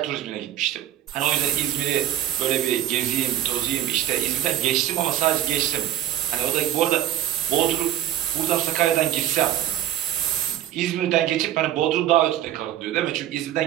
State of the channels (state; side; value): quieter; left; 12.1 dB